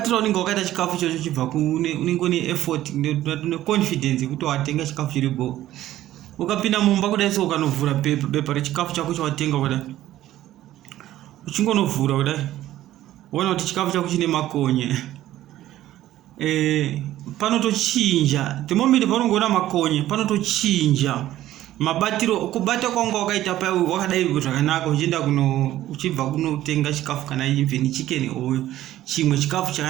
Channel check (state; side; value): quieter; left; 13.9 dB